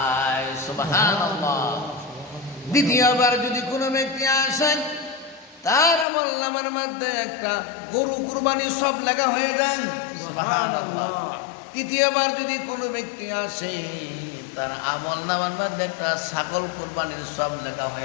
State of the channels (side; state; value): right; drops out; at 6.1 s